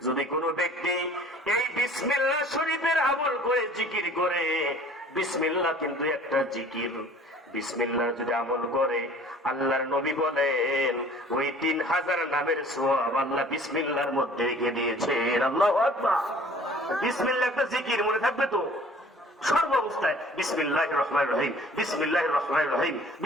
যদি কোনো ব্যক্তি এই বিসমিল্লাহ শরীফের আমল করে, জিকির করে, বিসমিল্লাহ কিন্তু একটা জিকির, বিসমিল্লাহ যদি আমল করে, আল্লাহর নবী বলেন ওই 3000 নামের সওয়াব আল্লাহ বিসমিল্লাহর মধ্যে রেখে দিয়েছেন। আল্লাহু আকবার। বিসমিল্লাহ একটা জিকির, মনে থাকবে তো সর্ব অবস্থায় বিসমিল্লাহির রহমানির রহিম, বিসমিল্লাহির রহমানির রহিম,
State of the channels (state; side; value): normal; both; correlation 0.50